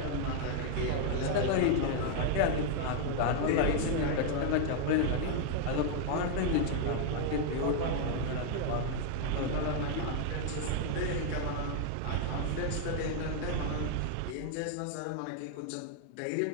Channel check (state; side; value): different; both; correlation 0.00